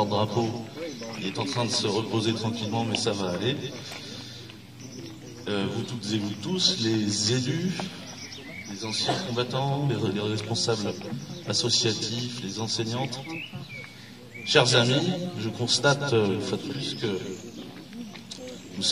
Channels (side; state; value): both; identical; correlation 1.00